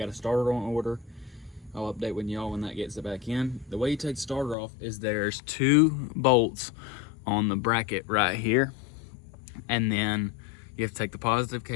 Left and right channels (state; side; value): drops out; right; at 4.5 s